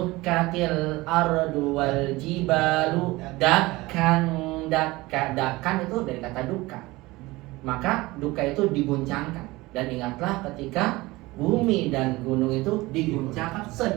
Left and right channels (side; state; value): left; quieter; 20.7 dB